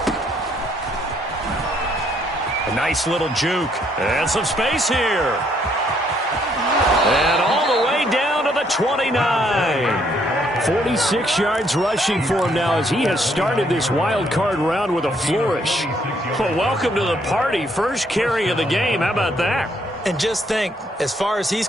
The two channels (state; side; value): normal; both; correlation 0.69